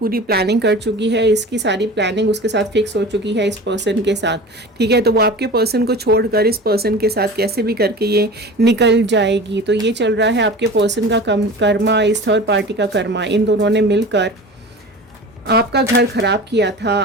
प्लानिंग कर चुकी है, इसकी सारी प्लानिंग उसके साथ फिक्स हो चुकी है इस पर्सन के साथ, ठीक है। तो वो आपके पर्सन को छोड़कर इस पर्सन के साथ कैसे भी करके ये निकल जाएगी। तो ये चल रहा है आपके पर्सन का कर्मा, इस थर्ड पार्टी का कर्मा। इन दोनों ने मिलकर आपका घर खराब किया था,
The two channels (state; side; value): normal; both; correlation 0.36